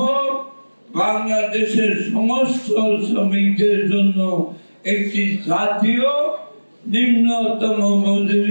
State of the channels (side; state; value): both; inverted; correlation -1.00